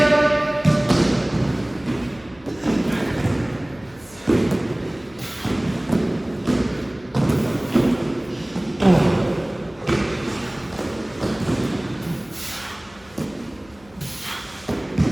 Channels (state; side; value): noise; left; hum, 26 dB below the sound